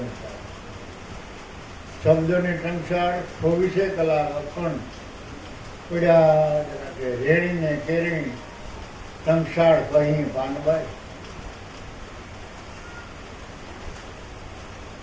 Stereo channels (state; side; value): identical; both; correlation 1.00